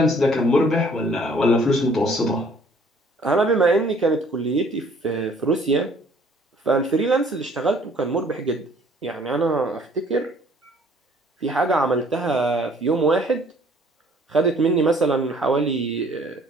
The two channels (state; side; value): normal; both; correlation 0.58